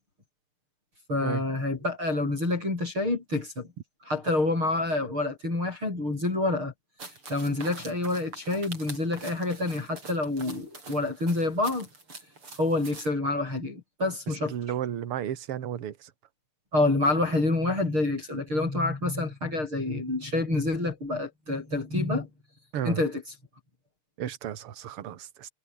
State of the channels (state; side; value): late; left; 6.5 ms